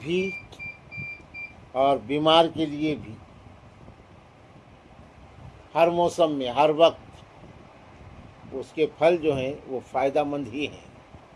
اور بیمار کے لیے بھی، ہر موسم میں ہر وقت اس کے پھل جو ہیں وہ فائدہ مند ہی ہیں۔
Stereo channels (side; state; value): both; identical; correlation 1.00